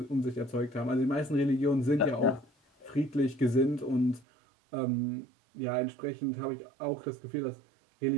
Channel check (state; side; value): drops out; left; at 4.2 s